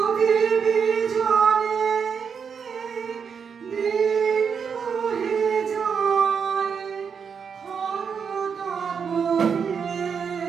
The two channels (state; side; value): quieter; left; 6.5 dB